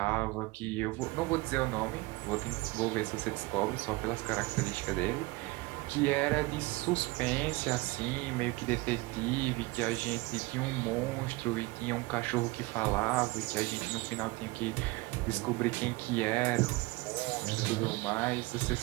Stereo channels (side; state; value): left; quieter; 22.7 dB